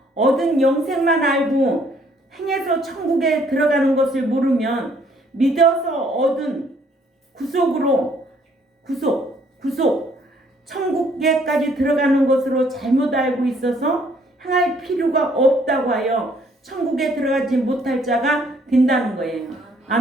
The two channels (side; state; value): both; normal; correlation 0.64